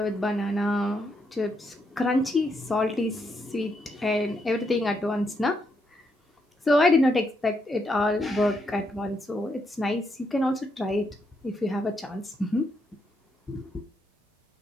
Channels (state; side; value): normal; both; correlation 0.79